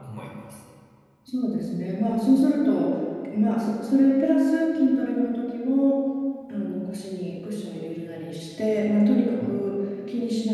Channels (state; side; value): identical; both; correlation 1.00